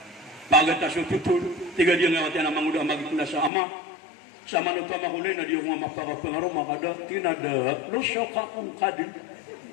Pagat ta sututul tiga dia nawate na manguda magikelas sa ama. Sa manuta makulay na dia ko mapakapangaro makada tinada lo syoka kung kadin.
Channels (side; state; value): right; drops out; at 3.5 s